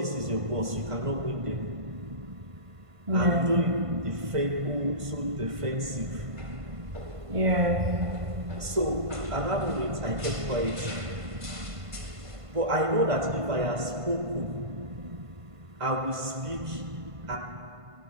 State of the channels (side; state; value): left; late; 1.5 ms